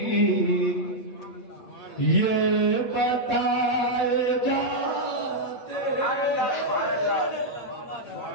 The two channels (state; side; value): late; right; 8.3 ms